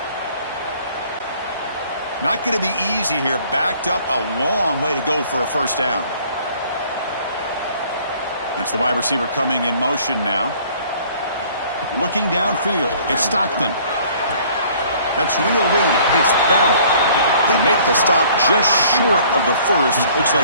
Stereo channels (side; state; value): both; inverted; correlation -0.55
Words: Not going to be easy here. Backed up a long way to go for a first down. That's the wide receiver coming in motion now. Looking downfield. It's Stockton. That's reeled in. It's Bell. They make the stop just short of the first. Looks